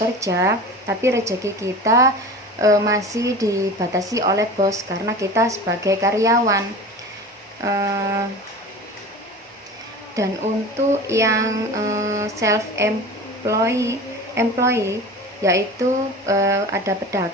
tapi rezeki kita masih dibatasi oleh bos karena kita sebagai karyawan. Dan untuk yang self employee yaitu ada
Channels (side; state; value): both; normal; correlation 0.35